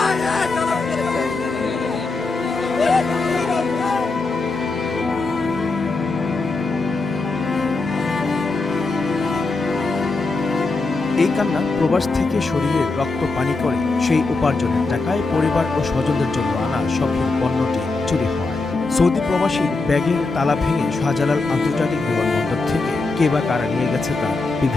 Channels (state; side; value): quieter; right; 3.6 dB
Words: এই কান্না প্রবাস থেকে শরীরের রক্ত পানি করে সেই উপার্জনের টাকায় পরিবার ও স্বজনদের জন্য আনা শখের পণ্যটি চুরি হওয়ায়। সৌদি প্রবাসীর ব্যাগের তালা ভেঙে শাহজালাল আন্তর্জাতিক বিমানবন্দর থেকে কে বা কারা নিয়ে গেছে তার